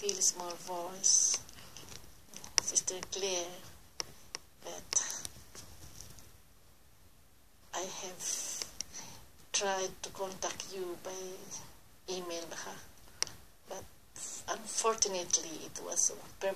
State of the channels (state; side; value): identical; both; correlation 1.00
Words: small voice, Sister Claire, that I have tried to contact you by email, but unfortunately it was